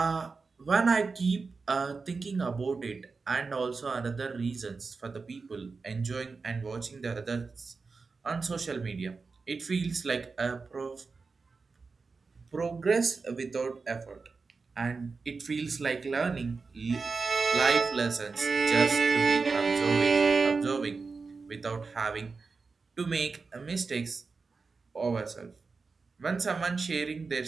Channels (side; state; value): left; quieter; 4.5 dB